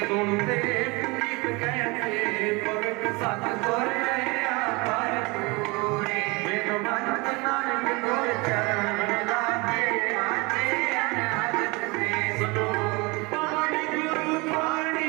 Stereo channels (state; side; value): quieter; left; 26.4 dB